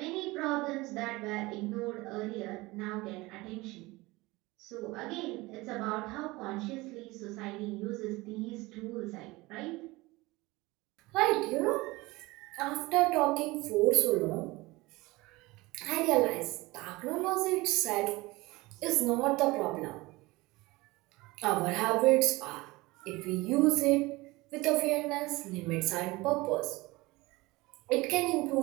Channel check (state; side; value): quieter; left; 21.6 dB